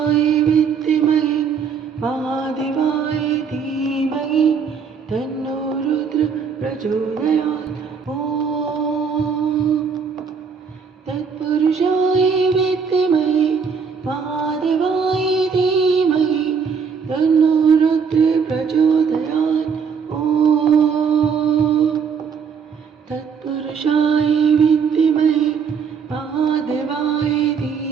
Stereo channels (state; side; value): quieter; left; 6.2 dB